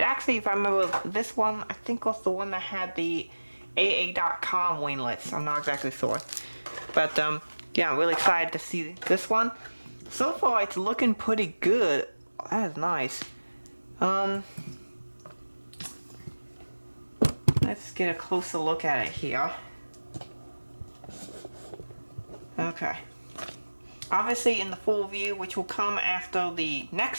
if I remember, this one I think was the one that had the AA.com winglets. I'm not exactly sure, but yeah, I'm really excited to see this one. So far it's looking pretty good. That is nice. Let's get a closer look at it here. Okay. Obviously in the full review, which will come after the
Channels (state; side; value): inverted; both; correlation -1.00